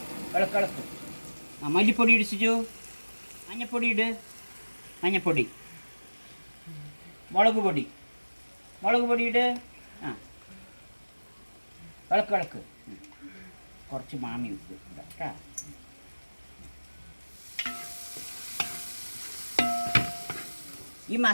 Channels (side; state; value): both; inverted; correlation -1.00